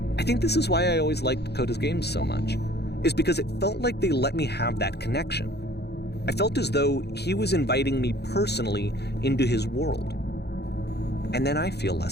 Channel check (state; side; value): late; right; 0.48 ms